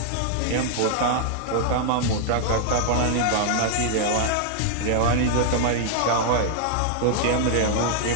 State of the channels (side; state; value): both; different; correlation -0.01